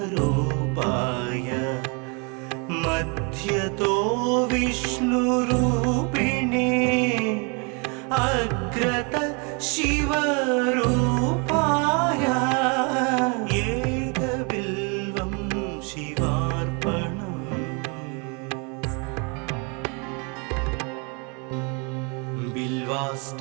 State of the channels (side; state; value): left; quieter; 33.3 dB